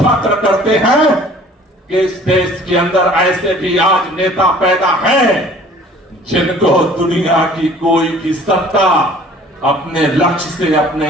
करते हैं कि इस देश के अंदर ऐसे भी आज नेता पैदा हैं जिनको दुनिया की कोई भी सत्ता अपने लक्ष्य से,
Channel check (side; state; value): both; normal; correlation 0.50